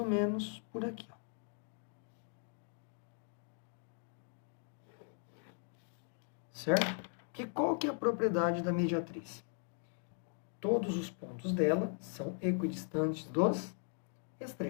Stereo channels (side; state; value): right; silent; 52 dB below the other